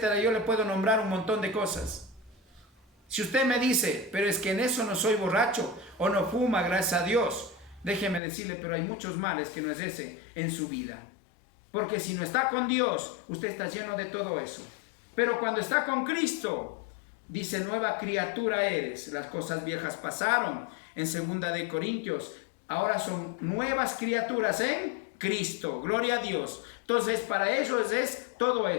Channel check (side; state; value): right; drops out; at 8.2 s